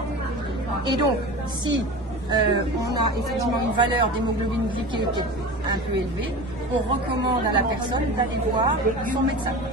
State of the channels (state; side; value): normal; both; correlation 0.32